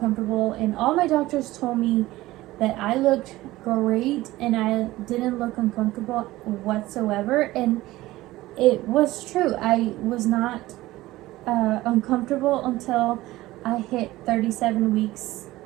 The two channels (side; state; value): left; quieter; 17.5 dB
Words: And all my doctors told me that I looked great and I didn't look uncomfortable whatsoever, and it was true. I was not uncomfortable until I hit 37 weeks